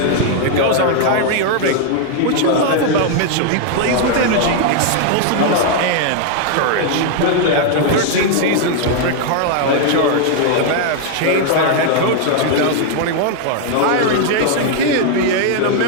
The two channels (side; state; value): both; different; correlation 0.00